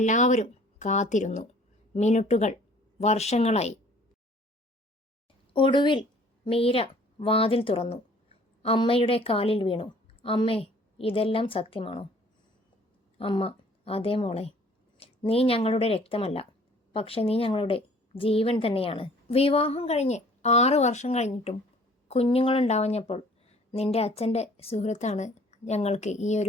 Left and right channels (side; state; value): both; normal; correlation 0.54